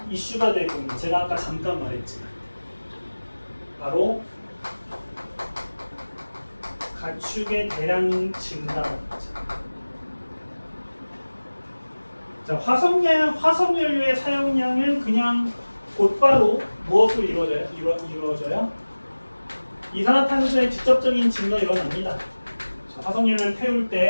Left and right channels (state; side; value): inverted; both; correlation -1.00